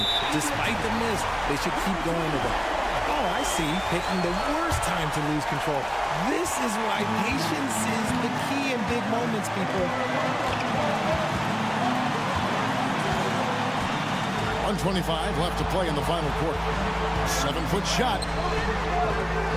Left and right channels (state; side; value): identical; both; correlation 1.00